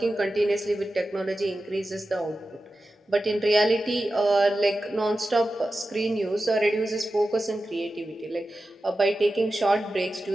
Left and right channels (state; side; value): normal; both; correlation 0.93